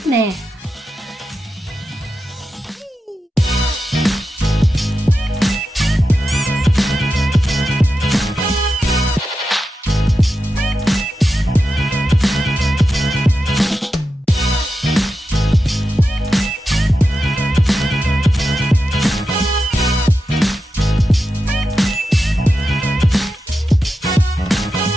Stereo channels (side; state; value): both; normal; correlation 0.90